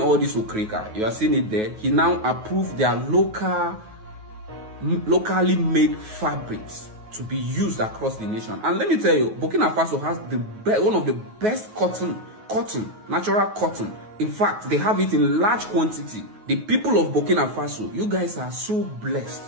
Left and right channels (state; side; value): late; left; 9.3 ms